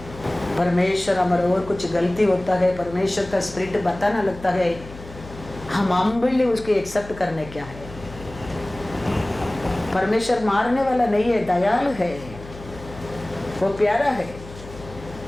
परमेश्वर हमारा और कुछ गलती होता है, परमेश्वर का स्पिरिट बताना लगता है, हम हम्बली उसको एक्सेप्ट करने क्या है। परमेश्वर मारने वाला नहीं है, दयालु है, वो प्यारा है।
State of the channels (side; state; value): left; noise; hum, 16 dB below the sound